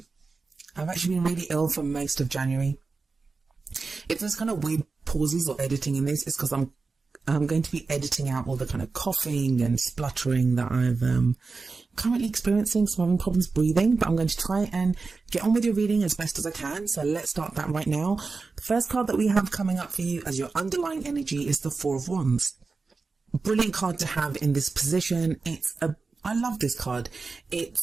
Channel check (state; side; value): quieter; left; 4.2 dB